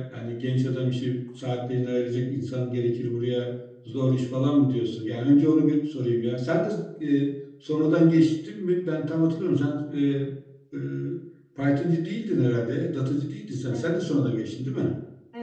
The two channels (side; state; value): both; identical; correlation 1.00